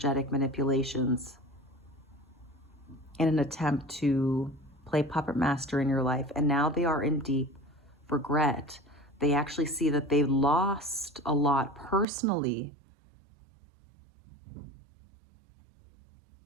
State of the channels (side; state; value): left; drops out; at 12.1 s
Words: manipulations in an attempt to play puppet master in your life. And now they are in deep regret. They actually see that they lost a lot personally